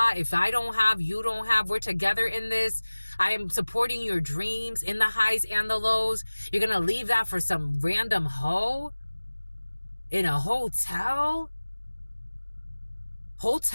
If I don't have, you don't have. We're together in this. I am supporting your dreams in the highs and the lows. You're going to leave that for some random hoe in a hotel?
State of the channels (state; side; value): inverted; both; correlation -1.00